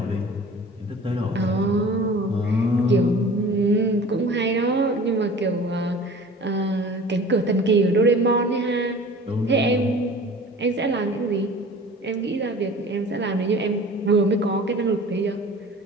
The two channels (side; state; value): both; normal; correlation 0.42